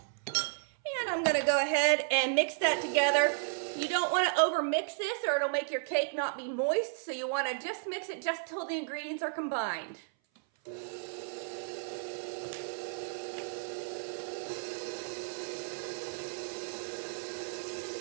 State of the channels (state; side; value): silent; left; 56 dB below the other